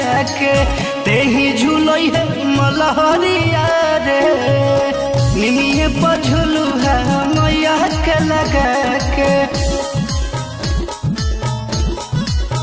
के। तेही झूलई है मलहरिया रे, निमिये पझुलू है मैया के लगा के।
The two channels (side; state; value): both; identical; correlation 1.00